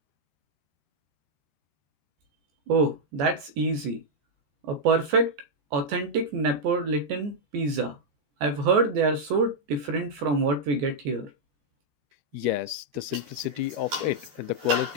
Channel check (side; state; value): left; late; 14 ms